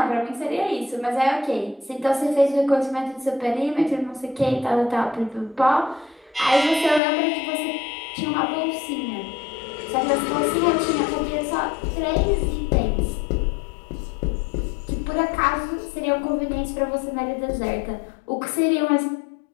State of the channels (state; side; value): drops out; right; at 7.0 s